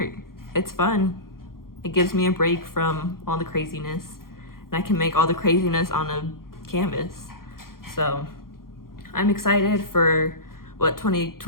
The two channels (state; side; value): late; right; 0.92 ms